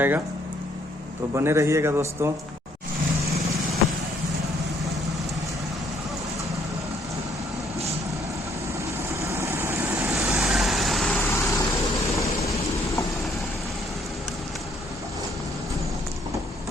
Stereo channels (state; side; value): normal; both; correlation 0.67